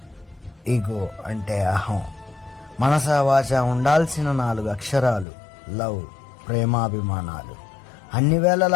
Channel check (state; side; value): drops out; right; at 5.2 s